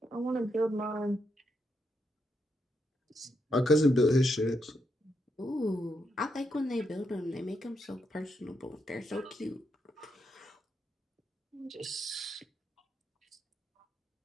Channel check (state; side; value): normal; both; correlation 0.80